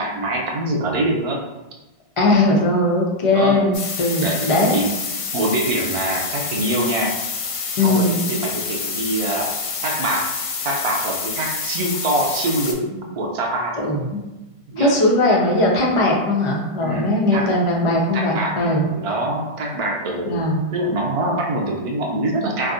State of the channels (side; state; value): left; late; 1.5 ms